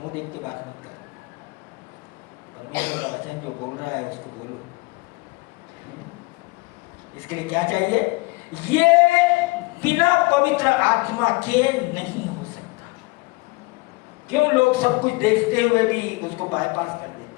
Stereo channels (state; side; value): quieter; right; 25.1 dB